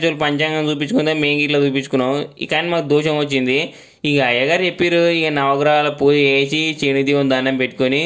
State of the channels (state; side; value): identical; both; correlation 1.00